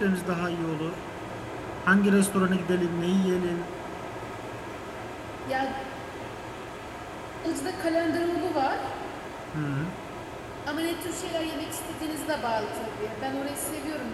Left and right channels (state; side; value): identical; both; correlation 1.00